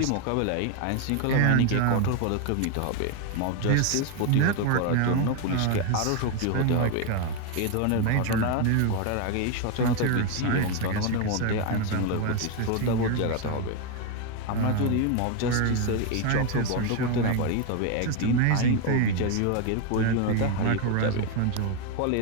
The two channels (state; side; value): different; both; correlation 0.01